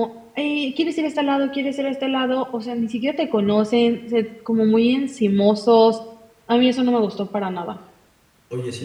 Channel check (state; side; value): identical; both; correlation 1.00